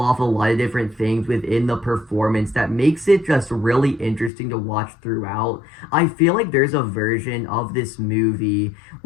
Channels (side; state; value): right; drops out; at 4.3 s